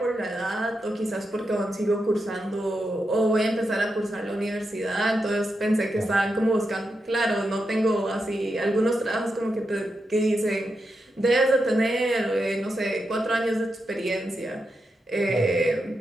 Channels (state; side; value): normal; both; correlation 0.86